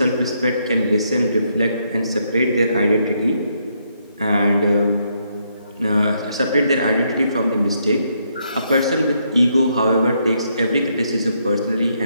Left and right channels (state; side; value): inverted; both; correlation -0.75